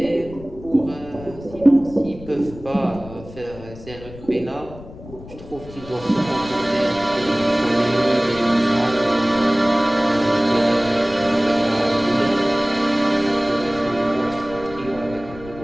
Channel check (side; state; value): left; noise; rumble, 16 dB below the sound